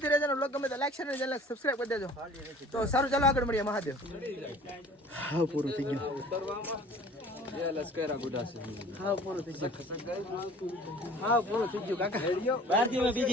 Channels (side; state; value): both; normal; correlation 0.48